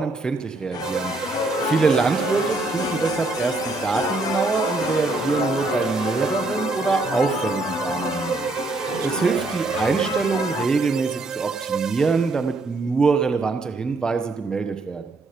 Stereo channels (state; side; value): quieter; left; 3.1 dB